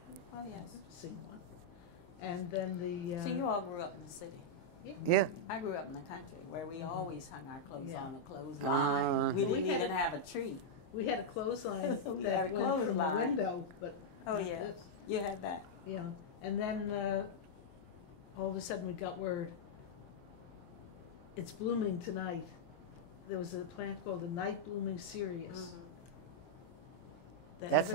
Oh, yes. I've seen one. And then the... So you all grew up in the city? Yeah. I grew up in the country where we always hung our clothes on a clothesline. We didn't even have a tree. We had a clothesline We that had a went from the clothesline. window, but... Oh, yeah. You had that. Yeah. And then all of a sudden we got word, it's blooming tonight. There was a plant called a night blooming cereus. That That's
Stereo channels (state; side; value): late; right; 23 ms